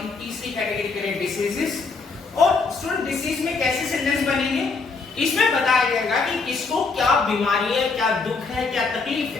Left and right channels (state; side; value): quieter; right; 4.4 dB